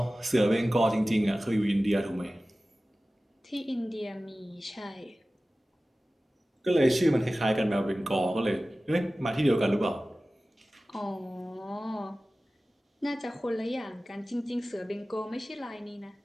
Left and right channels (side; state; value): both; normal; correlation 0.96